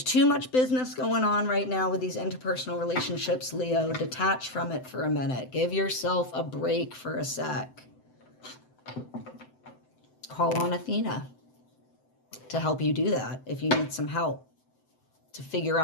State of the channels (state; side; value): late; right; 7.8 ms